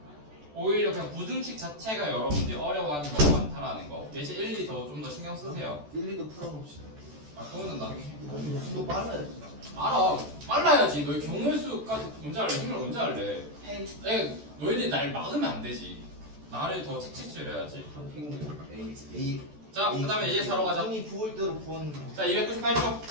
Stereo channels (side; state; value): left; late; 14 ms